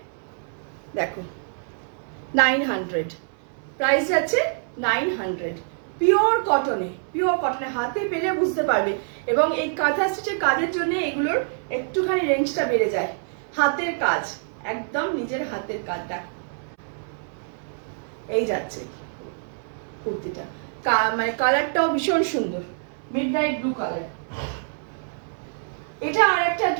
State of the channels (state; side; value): silent; left; 62 dB below the other